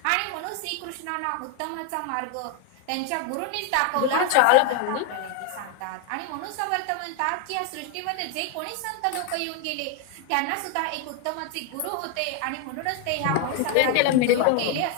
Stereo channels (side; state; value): both; different; correlation 0.01